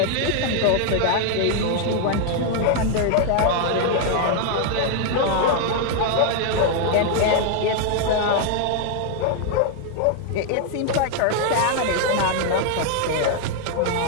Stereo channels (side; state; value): both; different; correlation 0.00